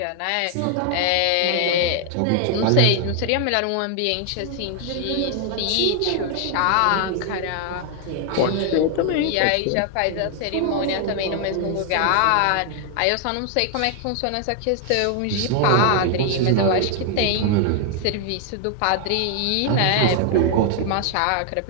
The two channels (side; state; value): both; different; correlation 0.00